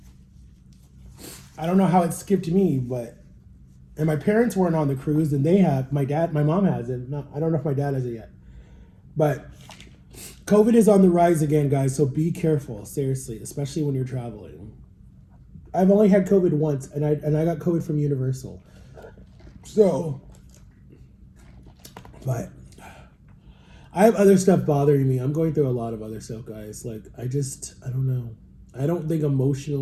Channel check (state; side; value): identical; both; correlation 1.00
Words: I don't know how it skipped me, and my parents weren't on the cruise, and my mom has it. I don't know if my dad has it yet. But COVID is on the rise again, guys, so be careful, seriously, especially when you're traveling. I've only had COVID once, and I got COVID from Universal. So, but I have other stuff bothering me. I'm going through a lot of other stuff, guys. Like, I don't know. I don't think